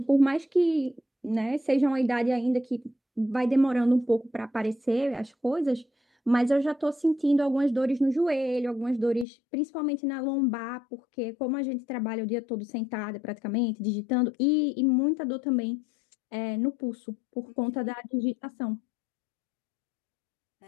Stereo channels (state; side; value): drops out; right; at 9.2 s